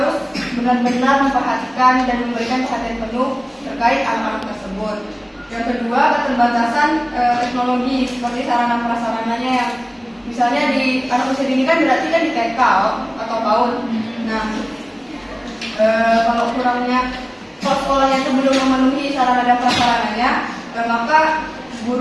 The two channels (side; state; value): both; identical; correlation 1.00